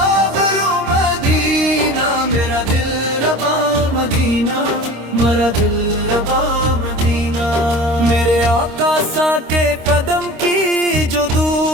مدینہ، میرا دل ربا مدینہ، میرا دل ربا مدینہ۔ میرے آقا سا کے قدم کی جو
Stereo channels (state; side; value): late; left; 26 ms